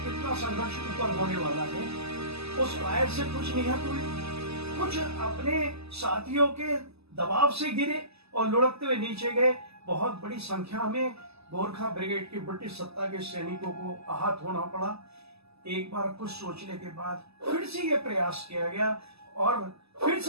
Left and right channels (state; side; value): late; left; 0.79 ms